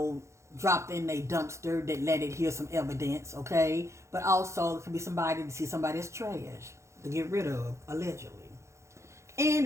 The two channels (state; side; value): late; left; 0.14 ms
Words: dropped in a dumpster that let it hear some evidence, okay? But also, it could be somebody to see somebody as trash to get rid of, allegedly. And